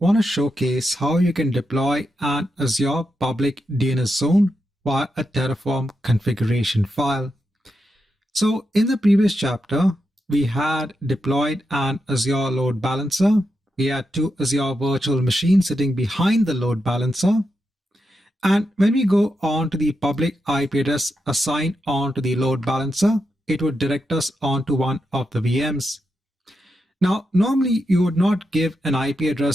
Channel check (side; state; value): both; normal; correlation 0.86